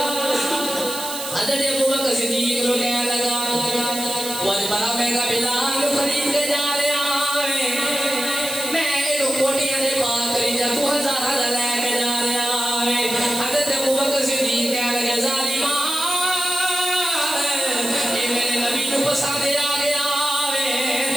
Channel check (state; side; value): noise; right; hiss, 8 dB below the sound